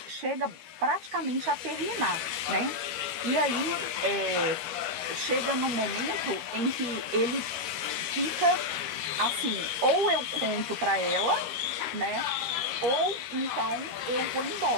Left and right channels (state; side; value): late; left; 13 ms